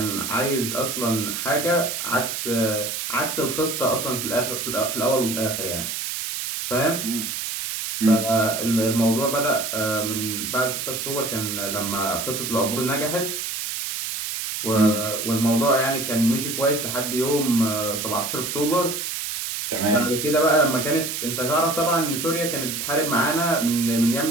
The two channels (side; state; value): right; noise; hiss, 4 dB below the sound